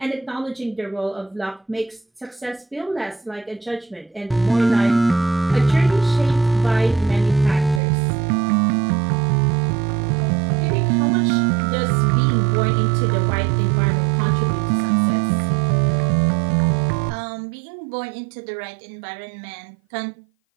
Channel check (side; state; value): left; drops out; at 7.8 s